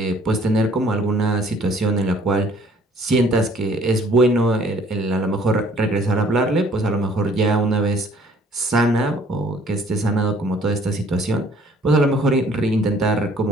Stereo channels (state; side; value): normal; both; correlation 0.58